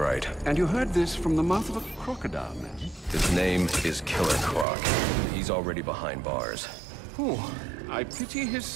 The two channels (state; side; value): drops out; left; at 4.7 s